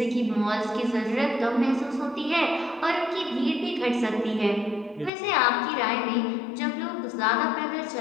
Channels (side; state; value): right; drops out; at 5.1 s